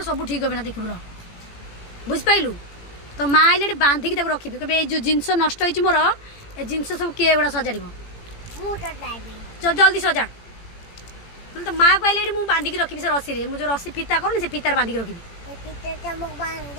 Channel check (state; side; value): late; right; 18 ms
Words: सब ठीक हे ना देख बुझिपारू तो माँ आइले बांधिकी रखी कहे जो जिनस नष्ट हो मोर ए जिनस सब किए गुड़ा सजाड़ जल्दी सजा तो माँ को आइले मुझे बांधिकी रखी से रसी मुझे रसी फिता कर से फितार बांधिकी रखी